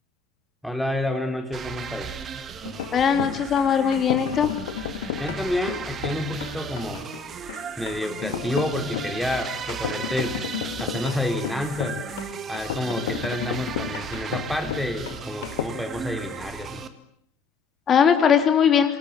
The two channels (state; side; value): quieter; right; 4.2 dB